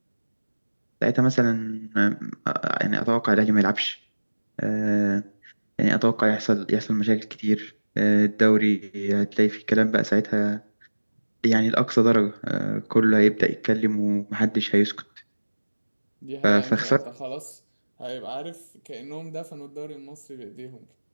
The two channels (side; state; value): both; inverted; correlation -1.00